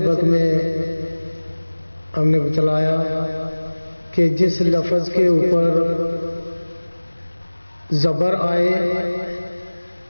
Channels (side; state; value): both; inverted; correlation -1.00